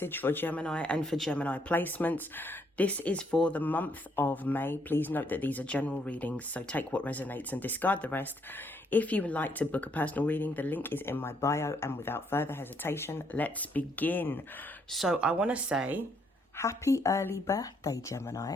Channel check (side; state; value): both; normal; correlation 0.71